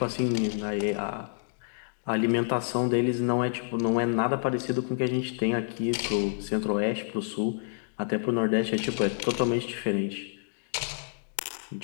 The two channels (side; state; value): right; silent; digital silence